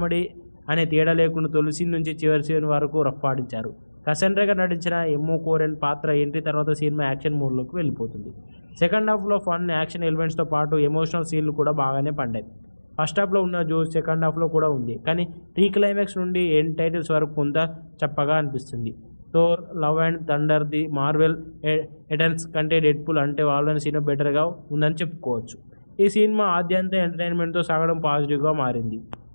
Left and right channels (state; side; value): inverted; both; correlation -1.00